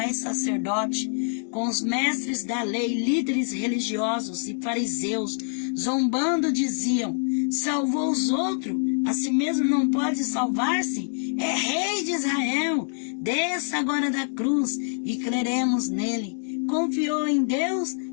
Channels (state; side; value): silent; right; digital silence